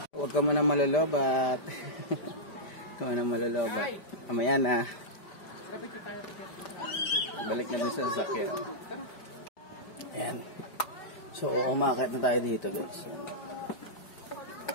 Huwag ka muna malalobat. Huwag ka muna malalobat. Mamaya na. Balik na din sa sasakyan. Ayan. So, umakit na tayo dito guys.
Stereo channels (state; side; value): late; right; 5.0 ms